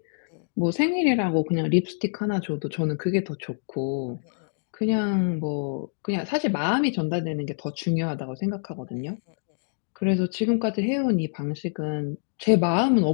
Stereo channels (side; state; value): right; silent; digital silence